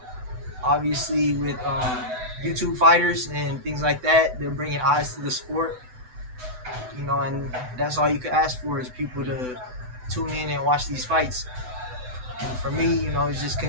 Obviously, with YouTube fighters and things like that, they're bringing eyes to the sport. And that's all you could ask for is people to tune in and watch these fights. And for me, it's just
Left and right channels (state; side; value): late; left; 7.9 ms